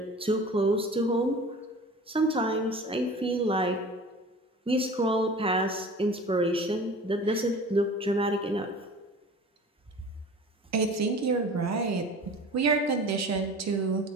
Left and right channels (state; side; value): normal; both; correlation 0.40